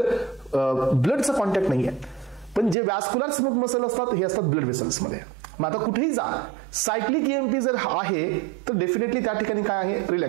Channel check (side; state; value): left; drops out; at 2.8 s